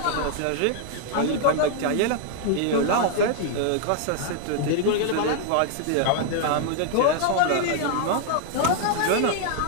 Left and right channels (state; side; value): different; both; correlation 0.00